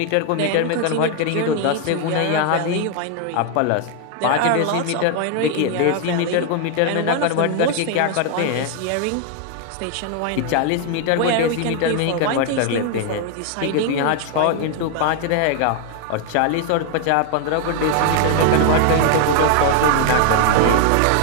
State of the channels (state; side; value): different; both; correlation 0.00